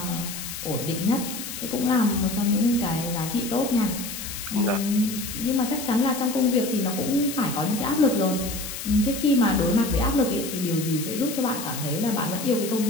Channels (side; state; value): left; noise; hiss, 8 dB below the sound